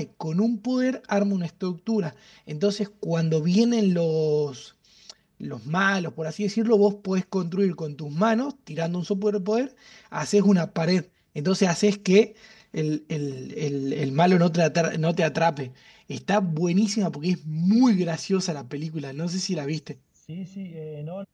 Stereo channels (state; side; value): identical; both; correlation 1.00